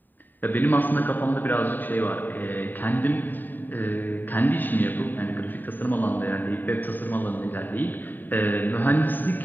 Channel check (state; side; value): late; right; 0.090 ms